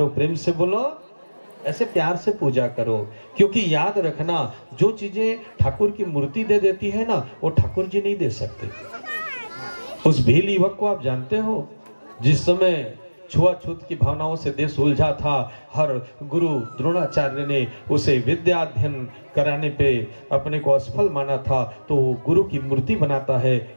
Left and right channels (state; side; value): inverted; both; correlation -1.00